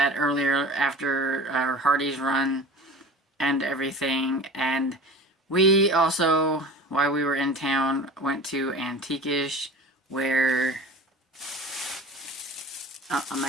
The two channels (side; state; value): both; normal; correlation 0.38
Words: earlier after our Hardee's run and everything. And we also, while we were in town, went to Antiquish, where I